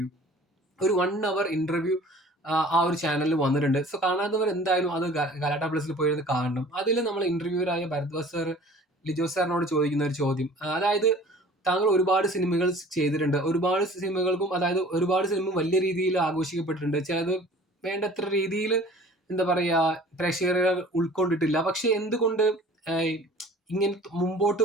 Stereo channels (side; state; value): both; normal; correlation 0.47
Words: ഒരു 1 അവർ ഇന്റർവ്യൂ ആ ഒരു ചാനലിൽ വന്നിട്ടുണ്ട്. സോ കാണാത്തവർ എന്തായാലും അത് ഗലാട്ട പ്ലസിൽ പോയിരുന്ന് കാണണം. അതിൽ നമ്മൾ ഇന്റർവ്യൂവറായ ഭരദ്വാജ് സാർ ലിജോ സാറിനോട് ചോദിക്കുന്ന ഒരു ചോദ്യം, അതായത് താങ്കൾ ഒരുപാട് സിനിമകൾ ചെയ്തിട്ടുണ്ട്. ഒരുപാട് സിനിമകൾക്കും, അതായത് ഒരുപാട് സിനിമ വലിയ രീതിയിൽ ആഘോഷിക്കപ്പെട്ടിട്ടുണ്ട്. ചിലത് വേണ്ടത്ര രീതിയിൽ എന്താ പറയാ പ്രേക്ഷകരെ ഉൾക്കൊണ്ടിട്ടില്ല. പക്ഷെ എന്തുകൊണ്ട് ഇങ്ങനെ